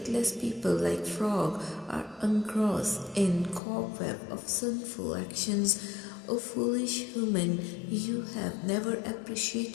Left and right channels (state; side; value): drops out; right; at 3.6 s